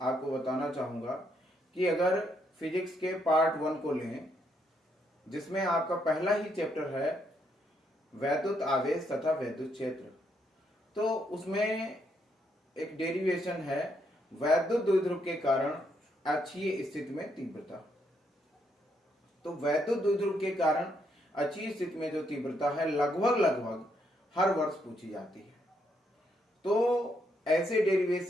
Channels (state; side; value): normal; both; correlation 0.75